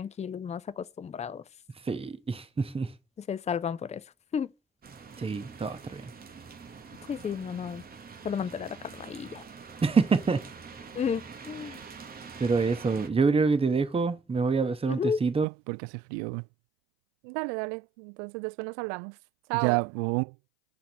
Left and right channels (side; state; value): left; drops out; at 15.5 s